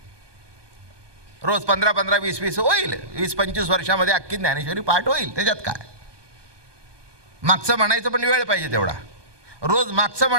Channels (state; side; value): late; left; 1.2 ms